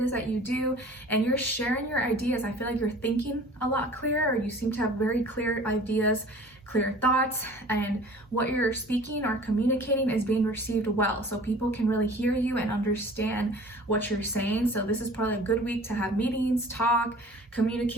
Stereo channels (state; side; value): normal; both; correlation 0.46